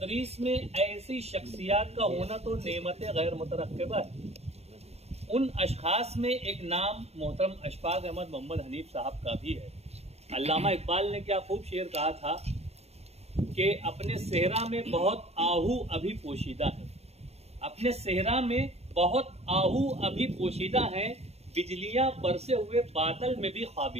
में ऐसी शख्सियात का होना तो नेमत गैर मुतरक्किबा है। उन अशखास में एक नाम मोहतरम अशफाक अहमद मोहम्मद हनीफ साहब का भी है। अल्लामा इकबाल ने क्या खूब शेर कहा था कि अपने सेहरा में बहुत आहू अभी पोशीदा है, अपने सेहरा में बहुत आहू अभी पोशीदा हैं, बिजलियां बरसे हुए बादल में भी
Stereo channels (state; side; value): late; left; 0.30 ms